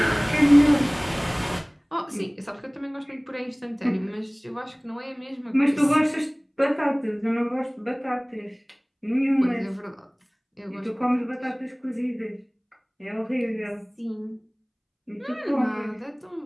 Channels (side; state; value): both; identical; correlation 1.00